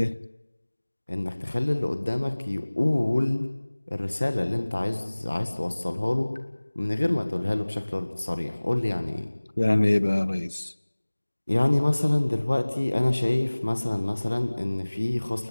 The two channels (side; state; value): both; inverted; correlation -1.00